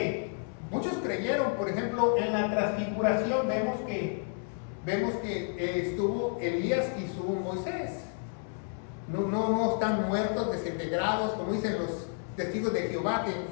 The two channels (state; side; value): silent; right; 56 dB below the other